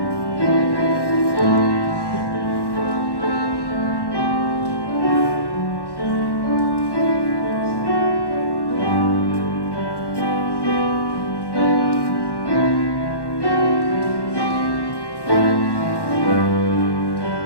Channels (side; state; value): right; late; 1.1 ms